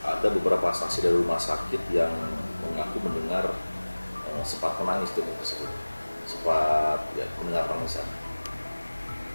ada beberapa saksi dari rumah sakit yang mengaku mendengar sempat menangis janin tersebut, sempat mendengar tangisan.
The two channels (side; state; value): both; inverted; correlation -1.00